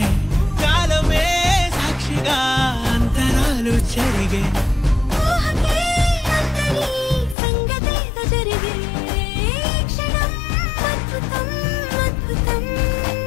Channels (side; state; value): right; drops out; at 7.4 s